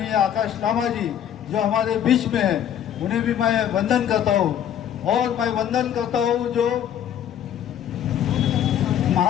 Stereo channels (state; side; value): quieter; right; 9.9 dB